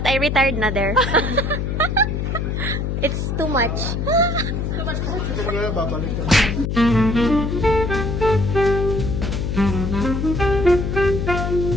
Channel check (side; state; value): left; noise; hum, 1 dB below the sound